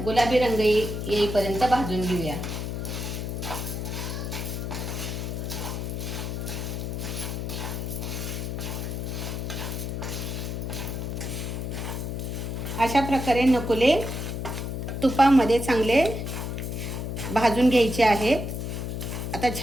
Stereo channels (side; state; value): left; noise; hum, 4 dB below the sound